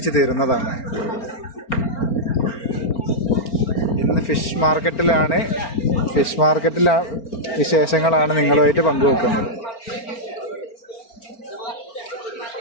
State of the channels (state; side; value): late; right; 4.4 ms